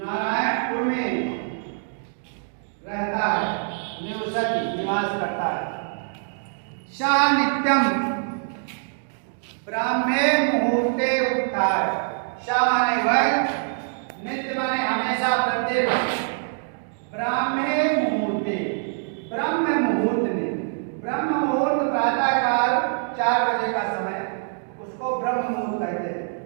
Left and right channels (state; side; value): silent; left; digital silence